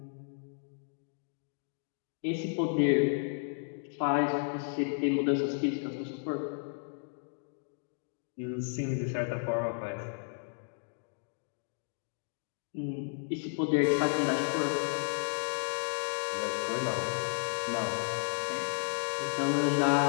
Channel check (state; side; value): silent; right; digital silence